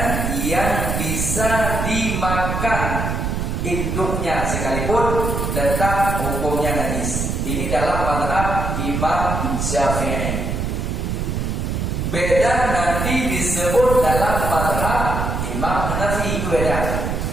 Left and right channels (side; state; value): right; noise; rumble, 1 dB below the sound